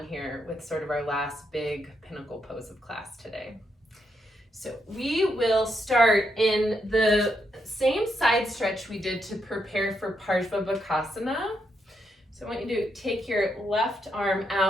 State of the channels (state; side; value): normal; both; correlation 0.80